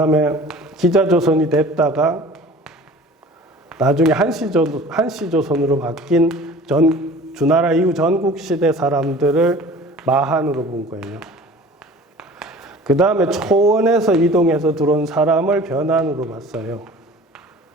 기자조선이 됐다가, 나중에 한시조선으로 바뀐 주나라 이후 전국시대 사람들을 마한으로 본 거예요. 그 다음에 초원에서 이동해서 들어온 사람을 변한으로 봤어요.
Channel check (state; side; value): normal; both; correlation 0.44